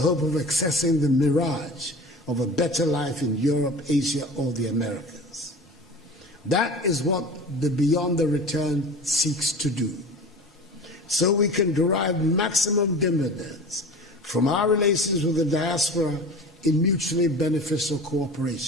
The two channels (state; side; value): normal; both; correlation 0.37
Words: of accessing the mirage of a better life in Europe, Asia, or the Americas. That is what the Beyond the Return seeks to do, so we can derive maximum dividends from our relations with the diaspora in mutually beneficial